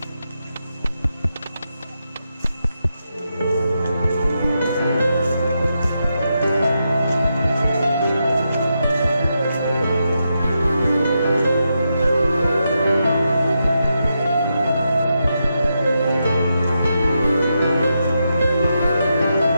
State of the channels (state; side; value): inverted; both; correlation -0.85